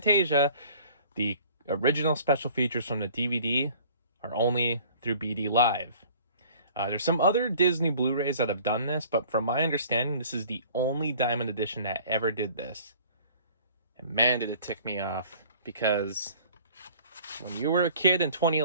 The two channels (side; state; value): both; inverted; correlation -0.50